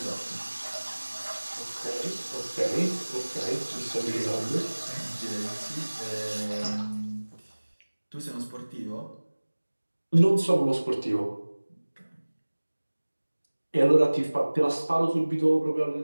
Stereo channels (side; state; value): both; inverted; correlation -1.00